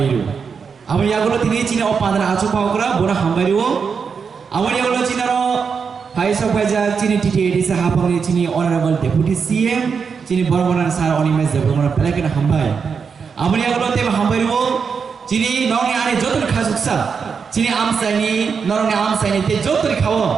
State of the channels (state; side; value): quieter; left; 5.9 dB